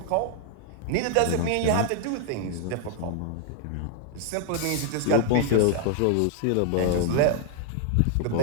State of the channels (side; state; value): both; different; correlation 0.00